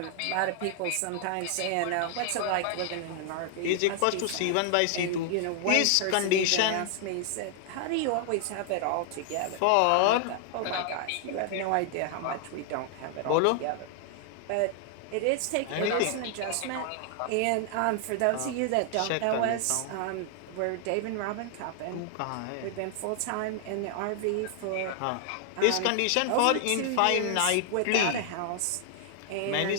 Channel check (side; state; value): both; different; correlation 0.00